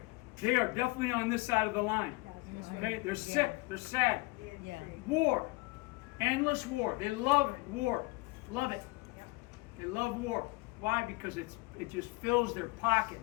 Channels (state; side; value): quieter; right; 24.7 dB